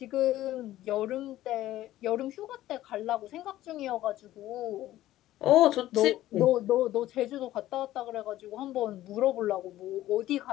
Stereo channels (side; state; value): right; quieter; 14.6 dB